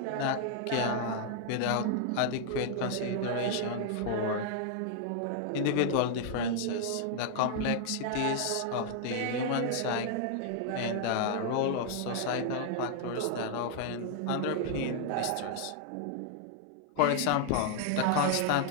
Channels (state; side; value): different; both; correlation 0.00